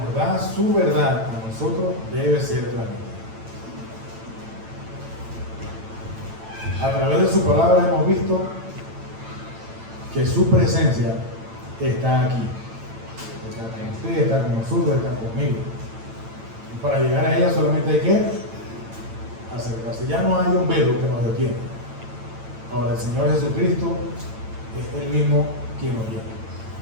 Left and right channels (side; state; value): left; late; 8.9 ms